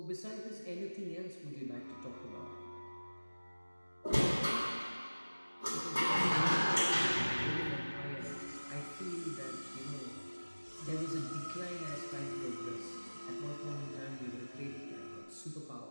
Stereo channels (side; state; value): both; inverted; correlation -1.00